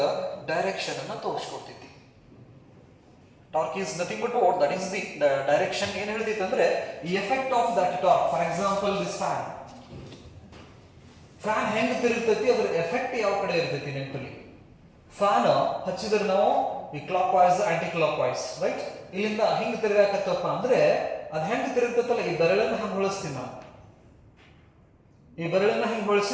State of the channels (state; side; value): identical; both; correlation 1.00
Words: ಡೈರೆಕ್ಷನ್ ಅನ್ನ ತೋರಿಸ್ಕೊಡ್ತೈತಿ. Torque is nothing but what? That is the direction. ಏನ್ ಹೇಳ್ತೈತಿ ಅಂದ್ರೆ effect of that torque. For example this fan ಹೆಂಗ್ ತಿರುಗ್ತೈತಿ, ಅದ್ರ ಎಫೆಕ್ಟ್ ಯಾವ ಕಡೆ ಇರ್ತೈತಿ? ನೆನಪಲ್ಲಿ ಫ್ಯಾನ್ ಹಚ್ಚಿದ್ರೆ ನಾವು ಈ clockwise anticlockwise, right? ಇಲ್ಲಿಂದ ಹಿಂಗ್ ತಿರುಗಾಕತ್ತಪ್ಪ ಅಂದ್ರೆ ಅದ್ ಹೆಂಗ್ ತಿರುಗ್ತೈತಲ್ಲ, ಈ ಬೆರಳನ್ನ ಹಂಗ್ ಹೊಳಿಸ್ತೀವಿ ನಾವು. ಈ ಬೆರಳನ್ನ ಹಿಂಗ್